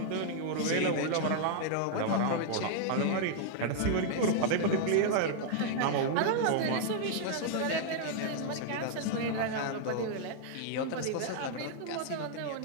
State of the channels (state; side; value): different; both; correlation 0.00